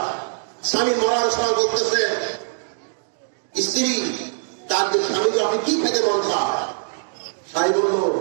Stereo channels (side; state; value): left; silent; digital silence